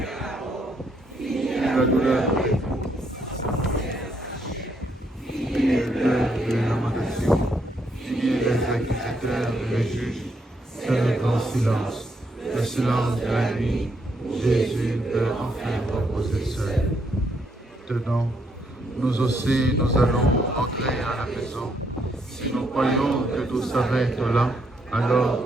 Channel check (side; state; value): both; normal; correlation 0.75